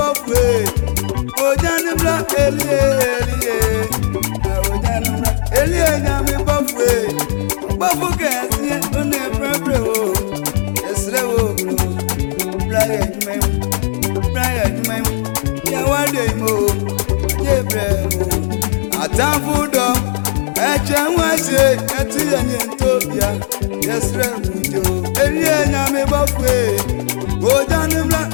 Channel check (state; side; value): silent; right; digital silence